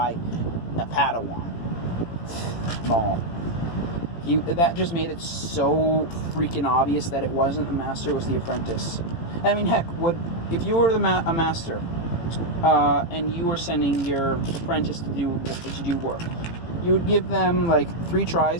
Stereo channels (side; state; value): right; late; 18 ms